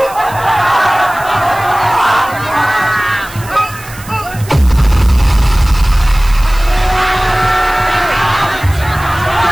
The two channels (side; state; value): right; noise; hiss, 18 dB below the sound